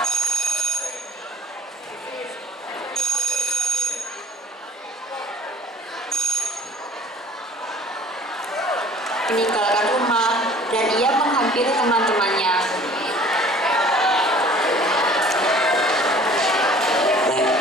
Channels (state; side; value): normal; both; correlation 0.50